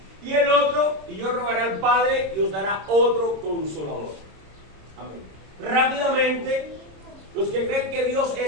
Y el otro, y yo rogaré al Padre y os dará otro consolador. Amén. Rápidamente, los que creen que Dios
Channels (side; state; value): left; late; 26 ms